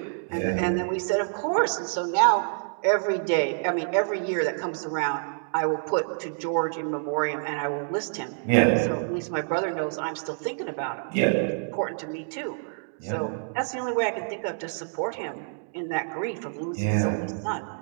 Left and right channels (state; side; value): silent; left; digital silence